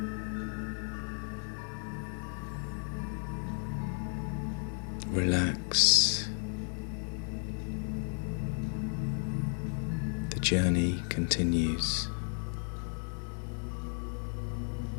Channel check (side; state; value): right; silent; 55 dB below the other